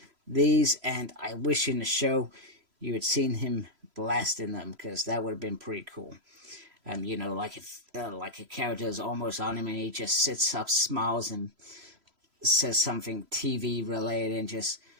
these, and I wish in the show you had seen him blasting them, because that would have been pretty cool. You know, like if like a character is almost on him and he just sits up, smiles, and says something TV related, and just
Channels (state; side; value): late; left; 3.0 ms